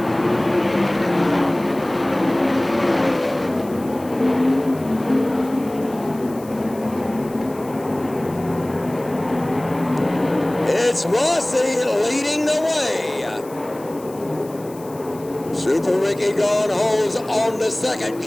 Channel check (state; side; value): noise; left; hiss, 22 dB below the sound